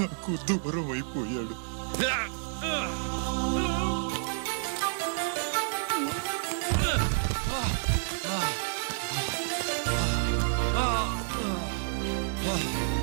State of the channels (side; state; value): left; silent; 58 dB below the other